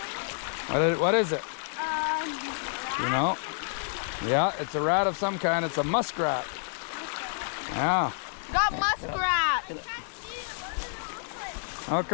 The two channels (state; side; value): silent; right; 59 dB below the other